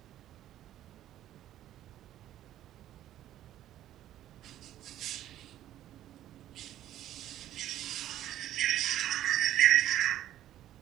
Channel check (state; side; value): quieter; left; 12.7 dB